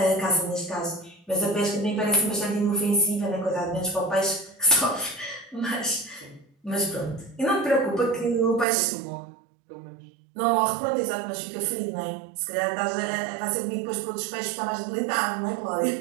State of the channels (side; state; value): left; drops out; at 8.7 s